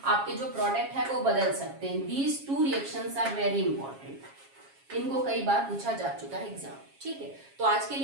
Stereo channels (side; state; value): left; late; 7.3 ms